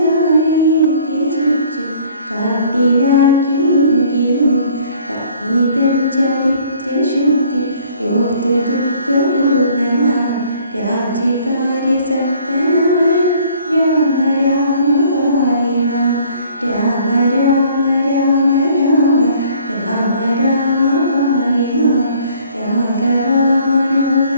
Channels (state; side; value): inverted; both; correlation -0.57